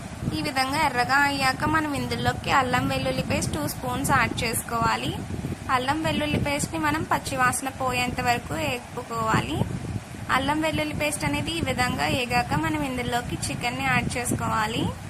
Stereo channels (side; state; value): both; identical; correlation 1.00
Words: ఈ విధంగా ఎర్రగా అయ్యాక మనం ఇందులోకి అల్లం వెల్లుల్లి పేస్ట్ 2 స్పూన్స్ యాడ్ చేసుకోవాలి. అల్లం వెల్లుల్లి పేస్ట్ని మనం పచ్చివాసన పోయేంత వరకు వేపుకోవాలి. అల్లం వెల్లుల్లి పేస్ట్ అనేది ఈ విధంగా వేగాక మనం ఇందులోకి చికెన్ని యాడ్ చేసుకోవాలి.